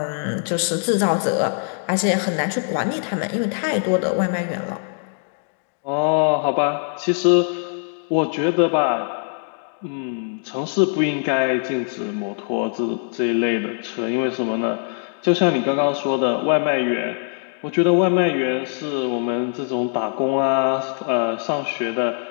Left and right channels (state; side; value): silent; right; digital silence